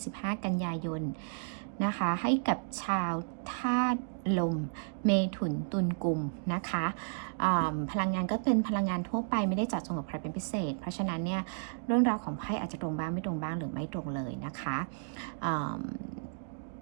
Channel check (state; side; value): silent; left; digital silence